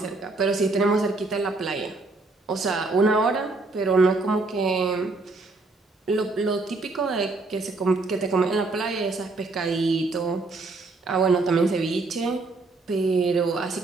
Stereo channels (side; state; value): left; quieter; 3.5 dB